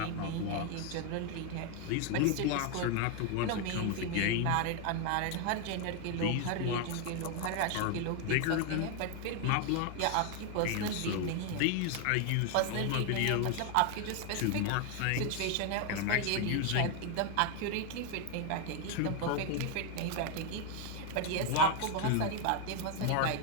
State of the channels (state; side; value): different; both; correlation 0.01